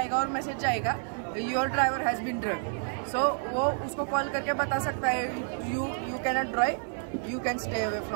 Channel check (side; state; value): left; silent; 58 dB below the other